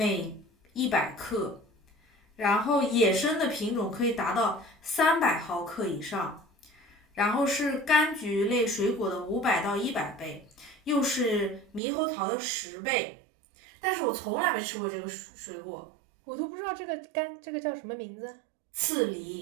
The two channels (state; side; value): drops out; left; at 11.8 s